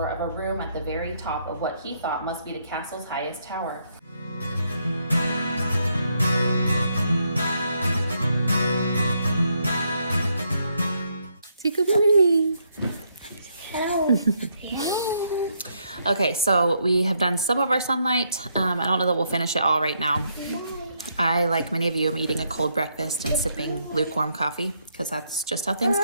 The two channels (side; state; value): both; inverted; correlation -0.75